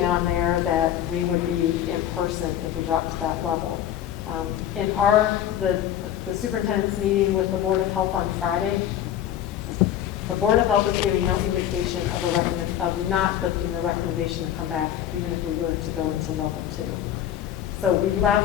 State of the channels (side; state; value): right; quieter; 10.8 dB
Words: on there that we would be in person if we dropped to that level. In the superintendent's meeting with the Board of Health on Friday, the Board of Health is giving no indication of not lifting the recommendation to come back, even if we were to go into level 2. So we